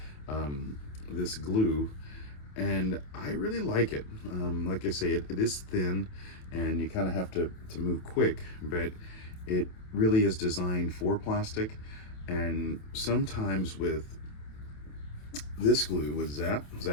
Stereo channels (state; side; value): late; right; 27 ms